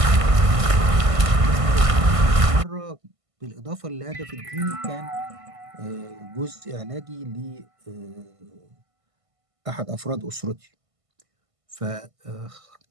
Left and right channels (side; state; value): left; late; 1.5 ms